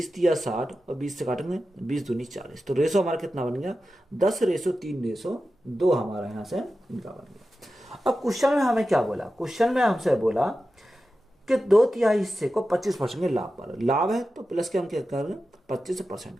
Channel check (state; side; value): normal; both; correlation 0.92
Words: तिया 60 और 20 से काटेंगे 20 दूनी 40। तो रेशो हमारा कितना बन गया? 10:3:2 हमारा यहाँ से इनका बन गया। अब क्वेश्चन में हमें क्या बोला? क्वेश्चन में हमसे बोला कि 2/3 हिस्से को 25% के लाभ पर, लाभ है तो प्लस के हम क्या करेंगे? 25%